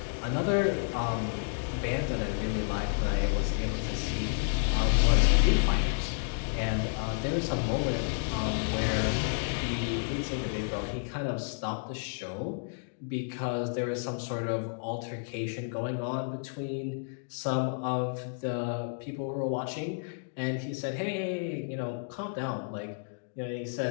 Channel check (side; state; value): right; silent; digital silence